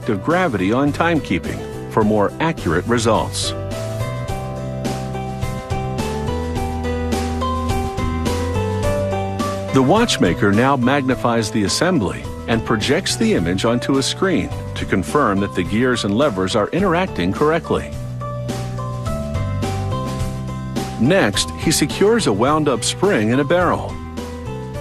of gravity on timekeeping for more accurate results. The watchmaker now magnifies the assembly and projects the image onto a screen to confirm that the gears and levers are interacting correctly. Next, he secures a wound-up spring in a barrel.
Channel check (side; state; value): both; identical; correlation 1.00